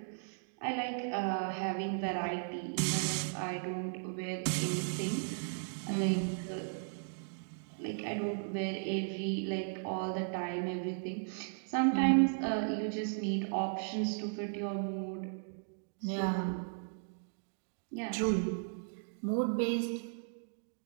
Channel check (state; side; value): silent; left; digital silence